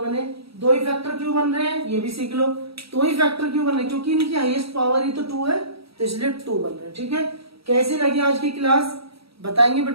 दो ही फैक्टर क्यों बन रहे हैं ये भी सीख लो। दो ही फैक्टर क्यों बन रहे हैं? क्योंकि इनकी हाईएस्ट पावर ही तो 2 है, तो इसलिए 2 बन रहे हैं, ठीक है। कैसी लगी आज की क्लास बताएंगे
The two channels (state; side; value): late; left; 0.76 ms